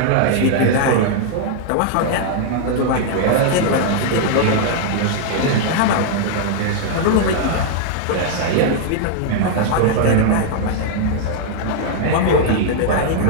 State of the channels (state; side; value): different; both; correlation -0.01